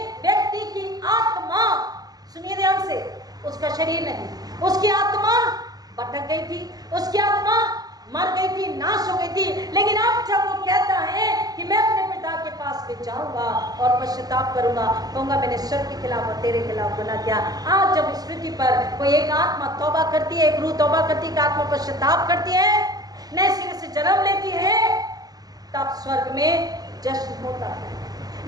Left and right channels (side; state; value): left; late; 0.19 ms